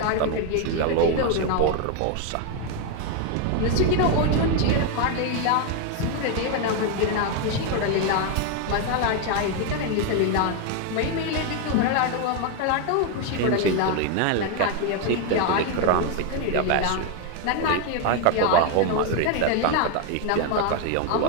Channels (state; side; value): different; both; correlation 0.01